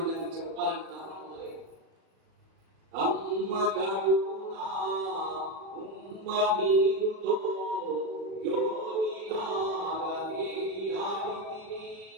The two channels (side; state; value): left; late; 37 ms